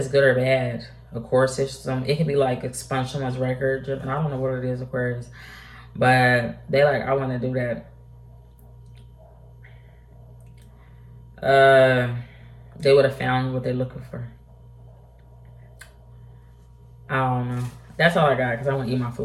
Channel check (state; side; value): identical; both; correlation 1.00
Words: good or bad. Of course, it could be like expunge someone's record. And I don't know what it is, Aquarius. But they like, I want to do that. They would have found what they're looking for. I don't know. That's all I got because I want to eat my